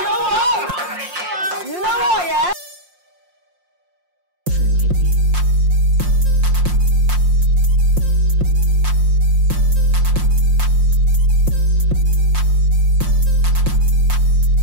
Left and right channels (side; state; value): left; late; 5.6 ms